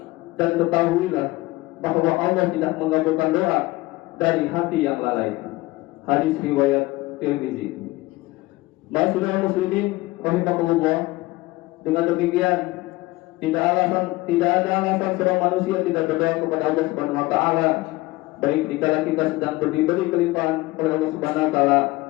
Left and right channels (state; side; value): quieter; right; 20.0 dB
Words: dan ketahuilah bahwa Allah tidak mengabulkan doa dari hati yang lalai. Hadis riwayat Tirmizi. Ma'asyiral muslimin rahimakumullah, dengan demikian tidak ada alasan seorang manusia tidak berdoa kepada Allah Subhanahu wa taala, baik dikala kita sedang diberi kelimpahan oleh Allah Subhanahu wa taala